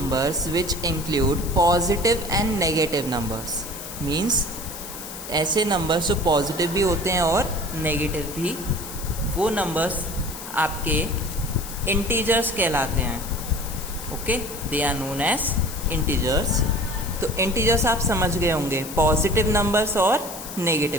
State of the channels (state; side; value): noise; left; hiss, 11 dB below the sound